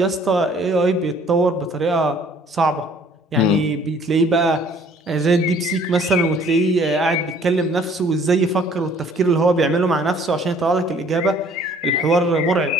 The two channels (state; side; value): normal; both; correlation 0.56